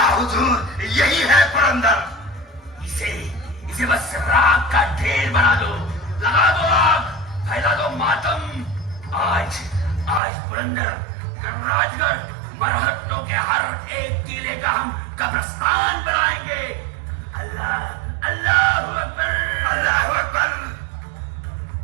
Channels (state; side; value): drops out; left; at 10.2 s